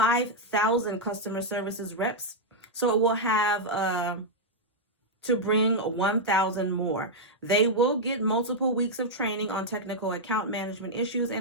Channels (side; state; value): both; normal; correlation -0.04